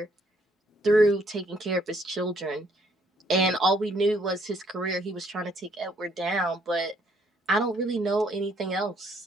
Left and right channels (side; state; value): both; normal; correlation 0.67